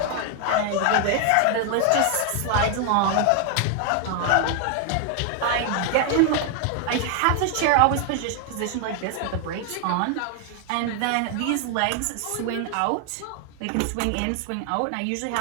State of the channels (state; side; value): different; both; correlation 0.00